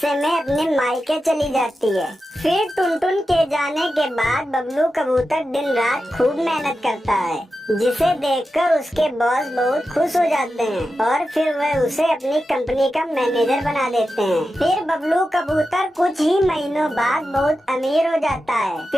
में अपने मायके चली जाती है। फिर टुनटुन के जाने के बाद बबलू कबूतर दिन रात खूब मेहनत करता है, जिसे देखकर उसके बॉस बहुत खुश हो जाते हैं और फिर वह उसे अपनी कंपनी का मैनेजर बना देते हैं। फिर बबलू कबूतर कुछ ही महीनों बाद बहुत अमीर हो जाता है।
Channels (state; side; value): normal; both; correlation 0.91